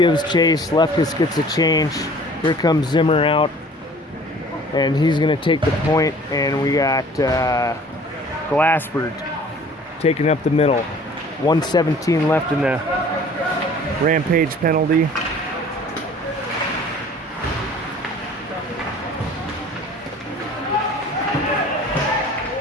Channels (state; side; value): normal; both; correlation 0.49